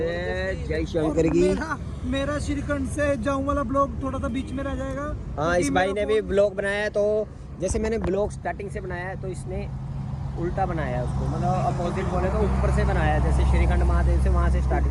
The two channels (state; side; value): identical; both; correlation 1.00